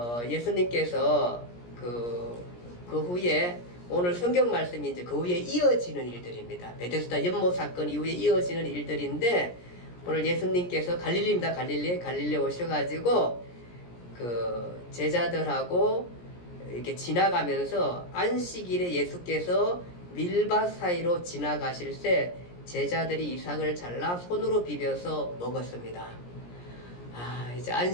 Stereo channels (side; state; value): right; late; 17 ms